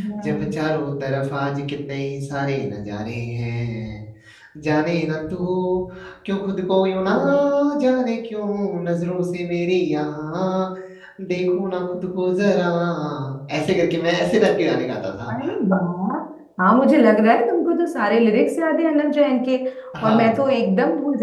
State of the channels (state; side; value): identical; both; correlation 1.00